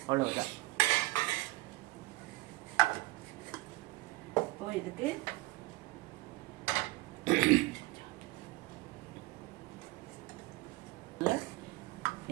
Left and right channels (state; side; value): quieter; left; 21.3 dB